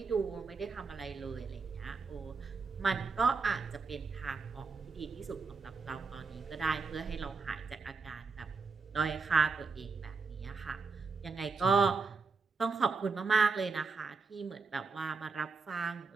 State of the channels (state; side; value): quieter; left; 4.6 dB